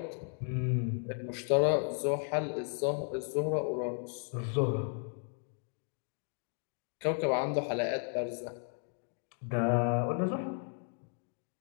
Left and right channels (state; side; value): silent; right; 55 dB below the other